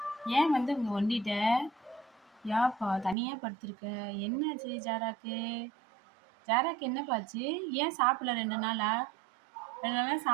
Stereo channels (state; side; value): drops out; left; at 3.2 s